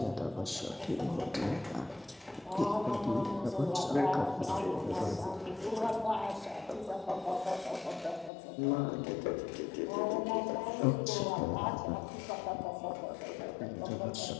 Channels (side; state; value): right; drops out; at 8.3 s